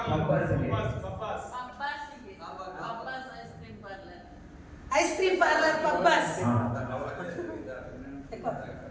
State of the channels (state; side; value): identical; both; correlation 1.00